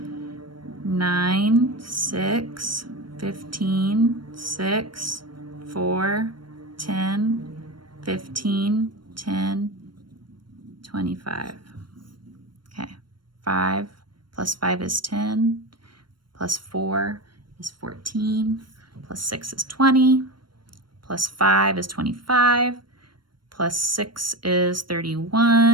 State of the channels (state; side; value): late; left; 0.72 ms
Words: 9, 6, 15, 6, 4, 10, 15, 10, 25. Okay, 5 plus 5 is 10, plus 4 is 14, plus 6 is 20, plus 5 is 25, plus 6 is